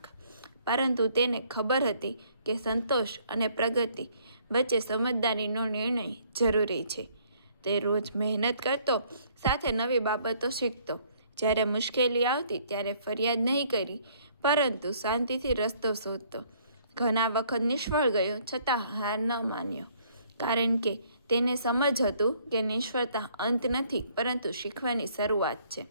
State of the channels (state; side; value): inverted; both; correlation -0.63